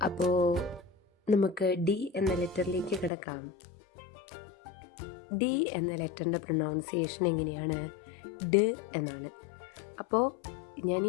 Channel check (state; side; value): drops out; right; at 3.1 s